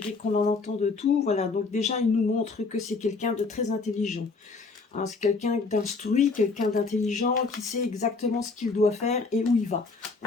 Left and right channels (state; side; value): quieter; right; 4.1 dB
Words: qu'on en entend de tout. Voilà. Donc déjà, il nous montre que c'est quelqu'un de très intelligent, hein. C'est quelqu'un d'instruit, quelqu'un d'intelligent qui sait exactement ce qu'il doit faire et où il va.